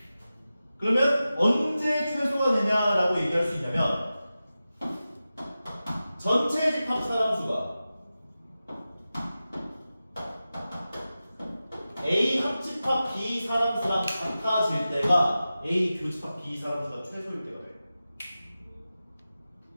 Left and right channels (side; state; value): both; inverted; correlation -0.94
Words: 그러면 언제 최소가 되냐라고 얘기할 수 있냐면 전체 집합 사람수가 A 합집합 B 사람수랑 같아질 때가 A 교집합 B 사람수가 최소일 때가 돼요.